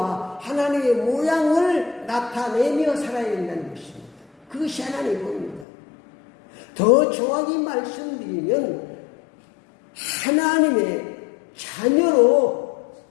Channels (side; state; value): right; drops out; at 5.7 s